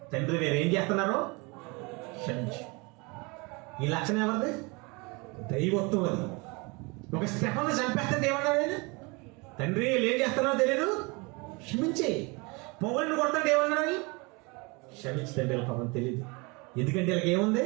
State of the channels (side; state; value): left; quieter; 27.9 dB